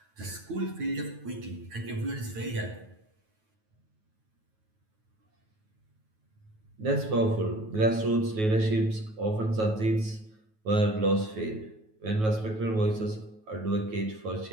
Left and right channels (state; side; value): late; left; 9.3 ms